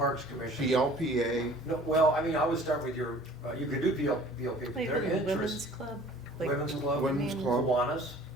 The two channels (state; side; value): normal; both; correlation 0.50